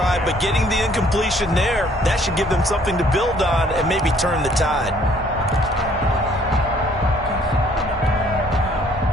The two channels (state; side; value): normal; both; correlation 0.61